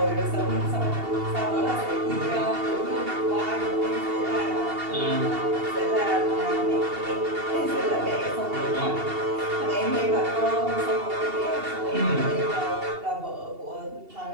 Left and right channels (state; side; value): late; left; 2.7 ms